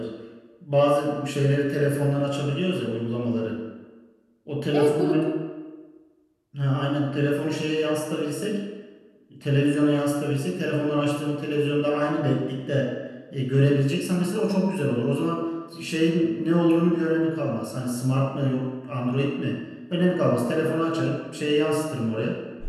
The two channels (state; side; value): identical; both; correlation 1.00